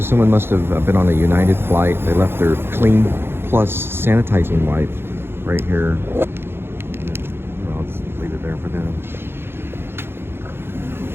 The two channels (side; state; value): left; late; 0.11 ms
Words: someone must have been on a United flight. They left their Clean Plus sanitizing wipe right here. Well, I'll just leave it there for them.